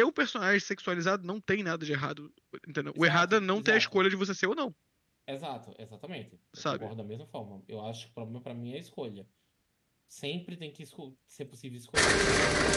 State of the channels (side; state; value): both; identical; correlation 1.00